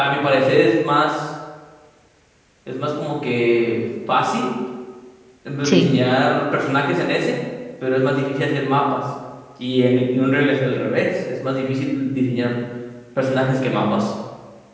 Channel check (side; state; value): both; identical; correlation 1.00